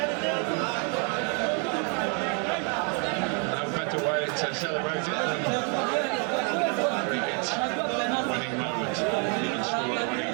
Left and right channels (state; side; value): quieter; left; 37.3 dB